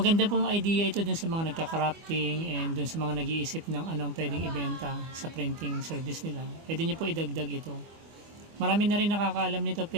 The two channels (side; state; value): left; late; 25 ms